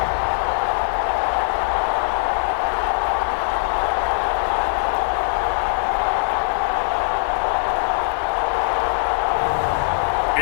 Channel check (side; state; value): right; silent; digital silence